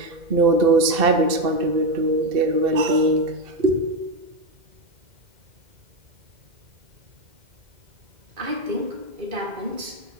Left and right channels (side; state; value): left; late; 2.1 ms